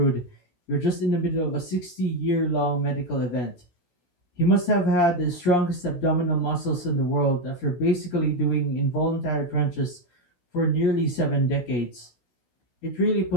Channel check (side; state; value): right; late; 16 ms